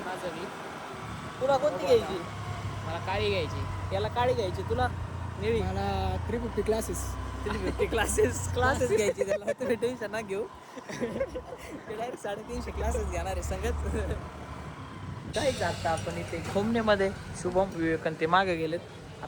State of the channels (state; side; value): identical; both; correlation 1.00